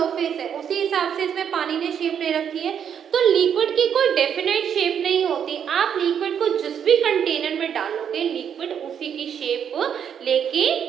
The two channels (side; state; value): left; quieter; 8.2 dB